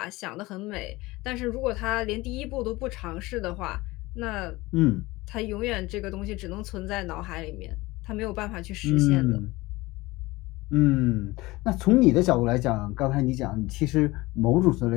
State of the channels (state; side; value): quieter; right; 20.7 dB